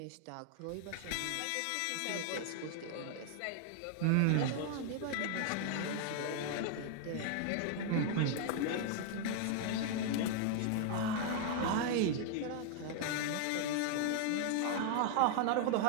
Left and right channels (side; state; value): both; different; correlation 0.00